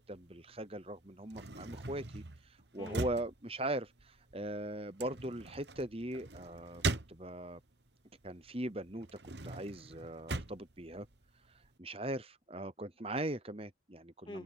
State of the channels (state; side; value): normal; both; correlation 0.49